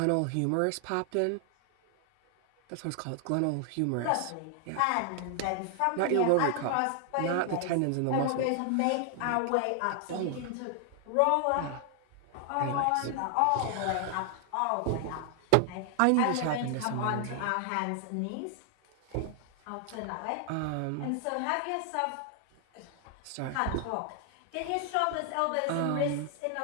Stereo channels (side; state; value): both; different; correlation 0.00